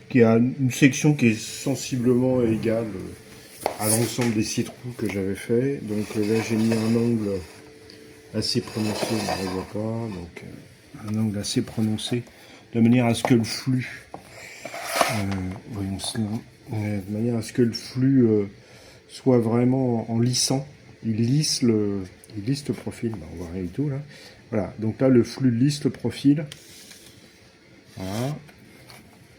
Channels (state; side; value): identical; both; correlation 1.00